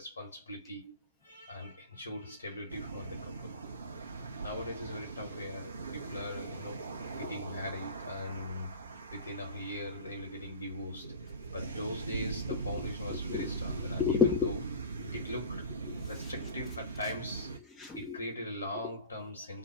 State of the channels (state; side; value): inverted; both; correlation -0.33